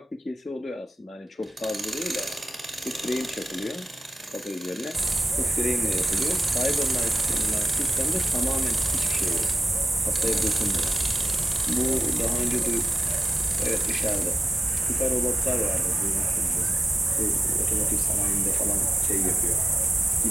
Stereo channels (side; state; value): both; normal; correlation 0.94